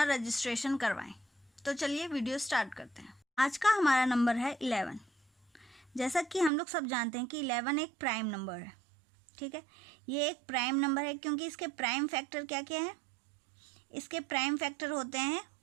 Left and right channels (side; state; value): left; drops out; at 6.5 s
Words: रजिस्ट्रेशन करवाएं। तो चलिए वीडियो स्टार्ट करते हैं। आज का हमारा नंबर है 11। जैसा कि हम लोग सब जानते हैं कि 11 एक प्राइम नंबर है। ठीक है, ये एक प्राइम नंबर है क्योंकि इसके प्राइम फैक्टर क्या क्या है। इसके प्राइम फैक्टर होते हैं